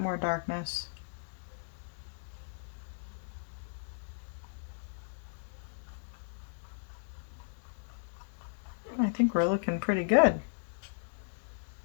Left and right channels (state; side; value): silent; right; digital silence